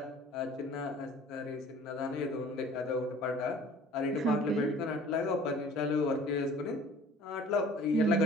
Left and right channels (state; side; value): normal; both; correlation 0.49